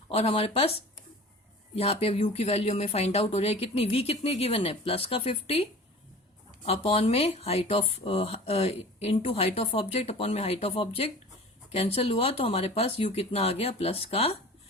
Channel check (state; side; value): normal; both; correlation 0.41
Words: और हमारे पास यहाँ पे u की वैल्यू में फाइंड आउट हो रही है कितनी, v कितनी गिवन है, प्लस का 50 अपॉन में height of into height of object upon में हाइट ऑफ ऑब्जेक्ट, कैंसिल हुआ तो हमारे पास u कितना आ गया, प्लस का